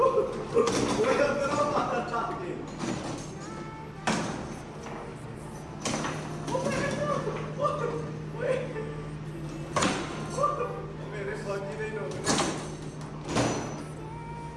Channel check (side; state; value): both; identical; correlation 1.00